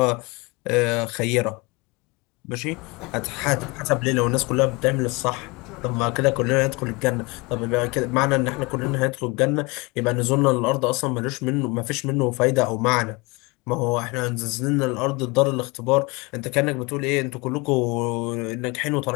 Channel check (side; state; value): right; quieter; 26.6 dB